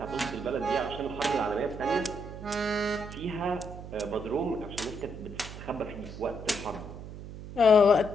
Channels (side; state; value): right; noise; hum, 11 dB below the sound